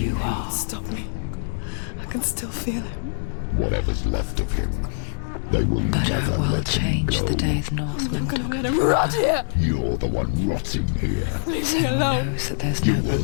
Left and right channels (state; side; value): silent; right; digital silence